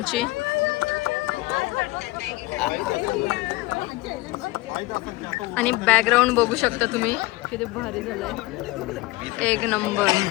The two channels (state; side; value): quieter; right; 20.3 dB